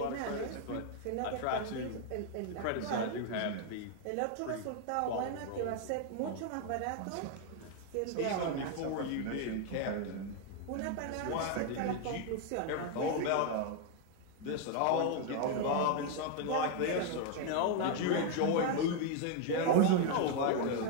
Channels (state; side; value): different; both; correlation 0.00